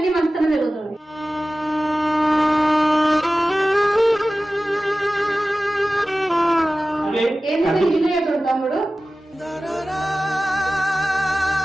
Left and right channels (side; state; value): both; normal; correlation 0.96